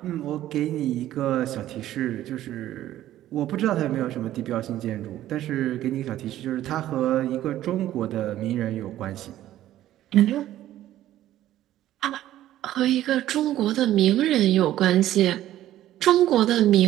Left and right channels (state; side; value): quieter; left; 13.4 dB